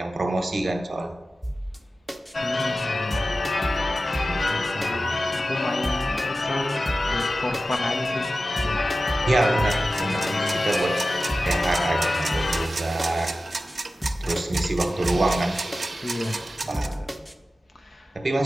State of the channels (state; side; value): normal; both; correlation 0.94